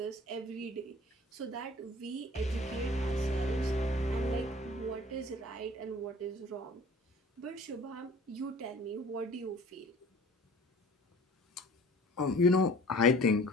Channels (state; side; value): normal; both; correlation 0.47